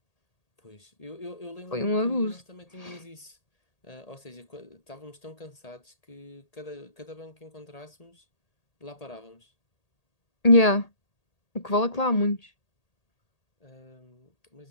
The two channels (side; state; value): right; late; 1.8 ms